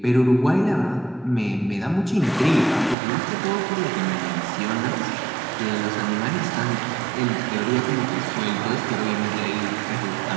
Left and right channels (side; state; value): left; drops out; at 3.0 s